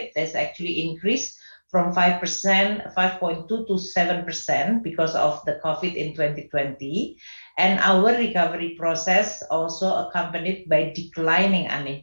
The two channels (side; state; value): both; inverted; correlation -1.00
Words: has actually increased from 5%, 5.2 to 7% because of the COVID in 2020. And our recovery process also accompanied by declining